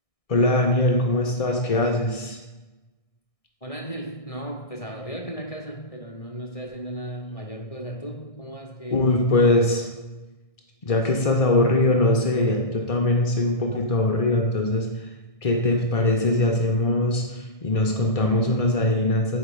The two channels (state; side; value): late; right; 1.6 ms